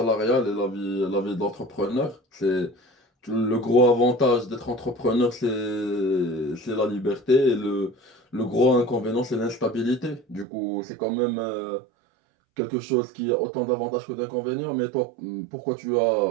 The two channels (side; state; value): left; drops out; at 10.5 s